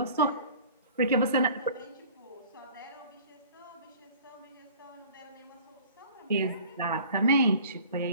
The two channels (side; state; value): both; inverted; correlation -0.46